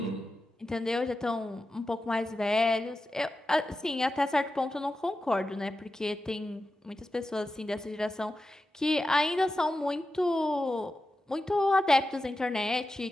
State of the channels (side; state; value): both; normal; correlation 0.92